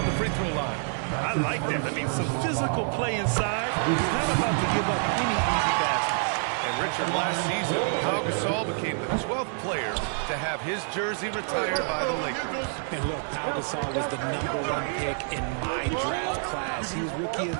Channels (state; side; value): silent; left; 60 dB below the other